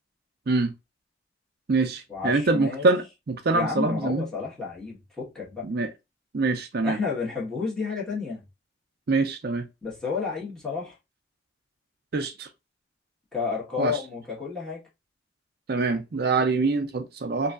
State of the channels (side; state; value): both; normal; correlation 0.29